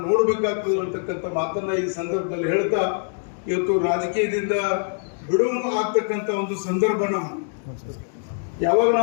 ನೋಡ್ಬೇಕಾಗ್ತದೆ ಅಂತಕ್ಕಂಥ ಮಾತನ್ನ ಈ ಸಂದರ್ಭದಲ್ಲಿ ಹೇಳ್ತಾ, ಇವತ್ತು ರಾಜಕೀಯದಿಂದ ಬಿಡುವು ಆಗ್ತಕ್ಕಂಥ ಒಂದು ಸಂದರ್ಭ ನಮ್ಮ ಯಾವಾಗ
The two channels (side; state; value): right; silent; 63 dB below the other